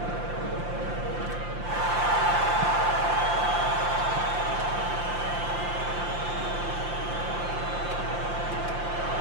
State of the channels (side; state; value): left; late; 5.8 ms